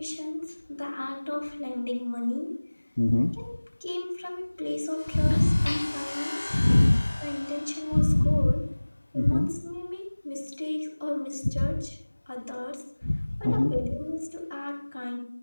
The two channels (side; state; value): both; inverted; correlation -1.00